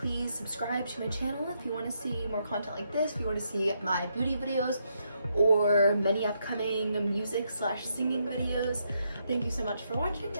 subscribe to my channel if you want to see more content like this, if you want to see my beauty videos or many upcoming music/singing videos. Thank you so much for watching,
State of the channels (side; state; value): both; inverted; correlation -0.78